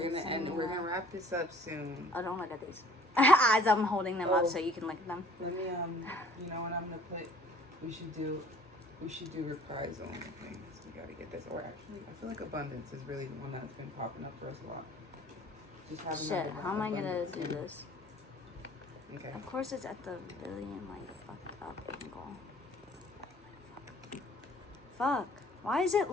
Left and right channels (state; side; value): normal; both; correlation 0.54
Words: We're gonna wrap this up soon. Oh, don't look at these. As I'm holding them up so you can look at them. Let me you know what I'm gonna put? We should do reprise only things. We gotta get this. Or actually, I feel like abundance is really the one that's been popping up for us a lot. Just having Shit, how am I gonna do this? Okay. Of course, it's at the really fucked up angle. Fuck. Why is it